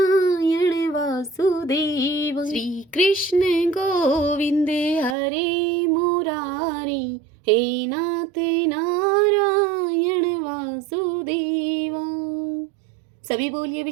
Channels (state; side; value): drops out; left; at 5.2 s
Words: वासुदेव। श्री कृष्ण गोविंद हरि मुरारी, हे नाथ नारायण वासुदेव। सभी बोलिए